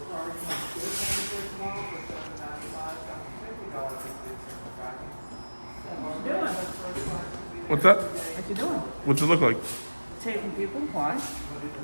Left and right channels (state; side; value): inverted; both; correlation -1.00